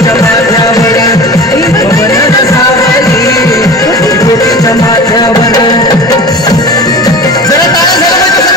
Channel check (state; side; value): normal; both; correlation 0.35